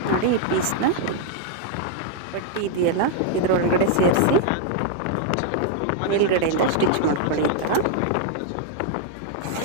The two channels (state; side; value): different; both; correlation 0.00